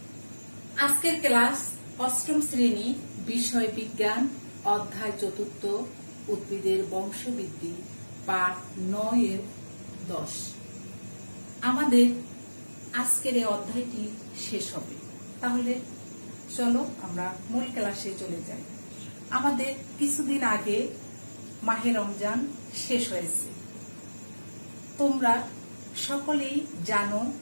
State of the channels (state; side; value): inverted; both; correlation -1.00